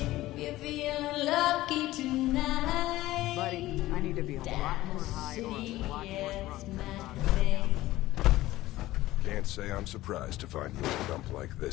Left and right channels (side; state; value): right; quieter; 16.5 dB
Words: Buddy, I need to be a lot more high or a lot more drunk. Can't say I'm surprised to find you in a dump like